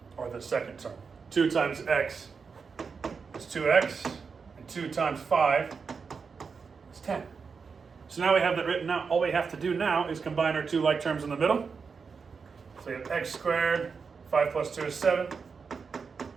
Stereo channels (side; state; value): left; quieter; 5.4 dB